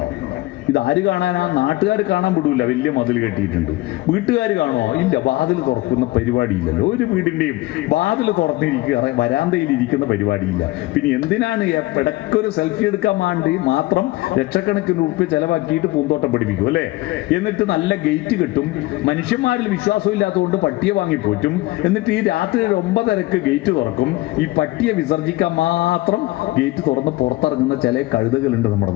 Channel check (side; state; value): right; quieter; 19.3 dB